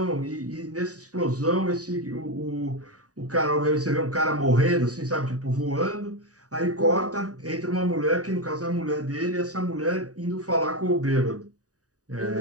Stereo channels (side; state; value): left; late; 0.67 ms